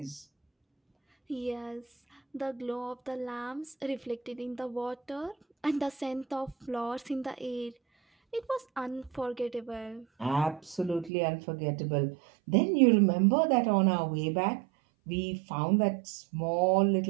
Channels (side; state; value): left; drops out; at 11.1 s